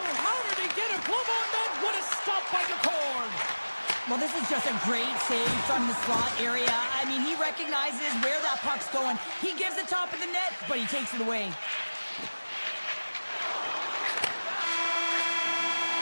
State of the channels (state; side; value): inverted; both; correlation -1.00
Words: how did he get a glove on that? What a stop by Decord. Well, this is just a great save from the slot area. I mean, he recognizes where that puck's going. He gives the top of the net, but he takes it away.